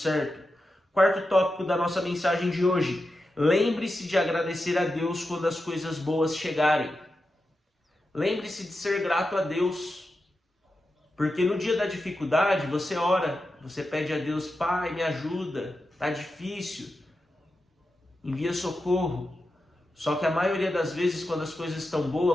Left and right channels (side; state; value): both; normal; correlation 0.90